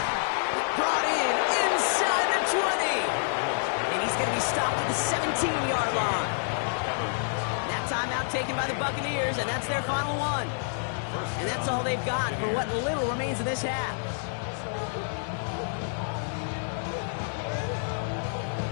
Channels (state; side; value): silent; right; 59 dB below the other